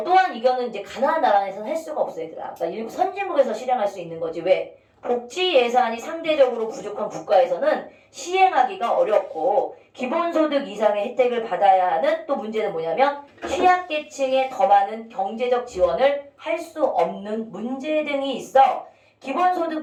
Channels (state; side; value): identical; both; correlation 1.00